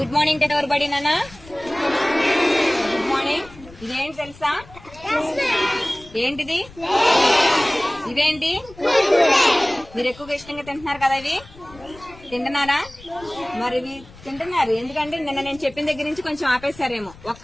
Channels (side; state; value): left; noise; rumble, 21 dB below the sound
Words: morning ఎవరు బడి నాన్న? Good morning. ఇదేంటి తెలుసా? ఏంటిది? ఇవేంటి? మీరు ఎక్కువగా ఇష్టంగా తింటున్నారు కదా, ఇవి తింటున్నారా? మరి ఇవి తింటున్నారు ఎందుకంటే నిన్న నేను చెప్పిన దగ్గర నుంచి కొంచెం ఆపేశారేమో.